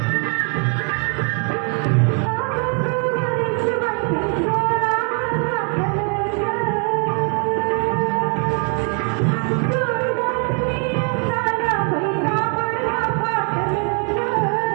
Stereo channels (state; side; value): quieter; left; 39.7 dB